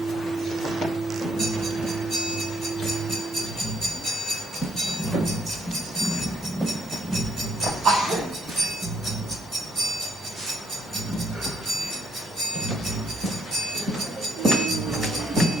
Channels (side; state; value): both; normal; correlation 0.69